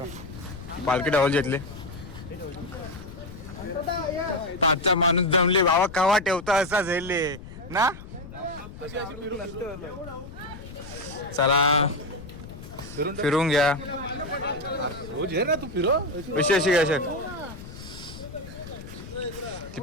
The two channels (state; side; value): noise; left; rumble, 14 dB below the sound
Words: पालखी डावल घेतले. आजचा माणूस जमले बाबा. कवा ठेवता असा झेलले ना. चला फिरून घ्या. तू फिरो अशी अशी घ्या ती